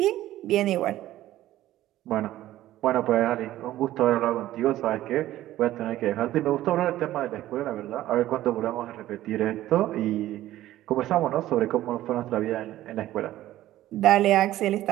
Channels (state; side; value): quieter; left; 14.5 dB